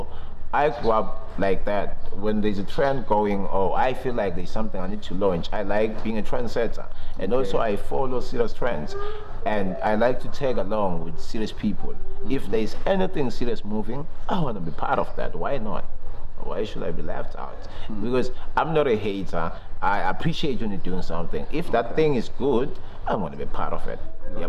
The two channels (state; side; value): identical; both; correlation 1.00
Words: I grew up like that. When there's a trend going, I feel like there's something I need to launch. I like being a trendsetter, and also I follow serious trends, and I like to tag along with serious people. If there's anything serious moving, I want to be part of that. Why not? Why should I be left out? Because I'm not a hater. I appreciate when you're doing something. If that thing is good, I want to be part of it.